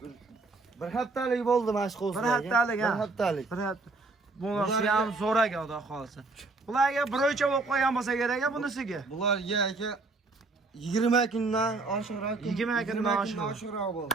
Bir haftalik bo'ldi mana shu qo'zlar. Bir haftalik, ha. Bir haftalik. Bir hafta. Bunisi ham zo'raga xudo xohlasa. Bularga bir o'lchab olib qo'ygan bo'lsa kerak bunisiga. Bularga aka 20 kundan oshiqroq. 20 kundan oshiqroq bo'ldi.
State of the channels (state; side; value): quieter; left; 3.5 dB